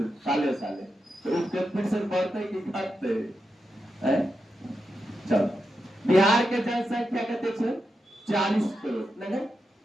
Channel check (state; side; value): normal; both; correlation 0.87